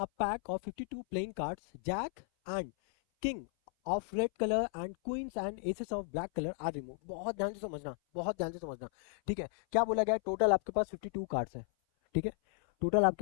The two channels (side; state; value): right; silent; 55 dB below the other